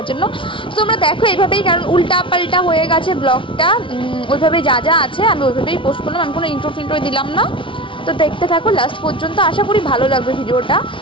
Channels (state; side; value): late; right; 0.25 ms